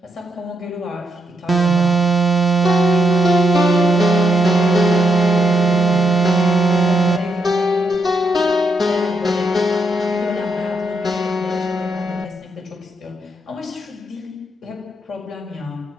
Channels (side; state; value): both; normal; correlation 0.80